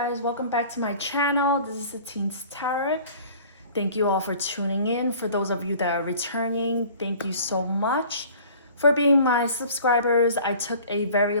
welcome back to my channel. This is the Teens Tarot. Thank you all for tuning in. For those of you that are returning, thank you so much for being my subscribers. I took a very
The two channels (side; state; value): both; inverted; correlation -0.48